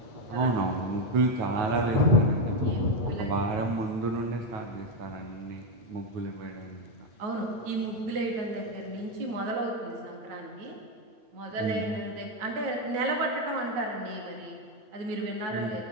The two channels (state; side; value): late; left; 9.3 ms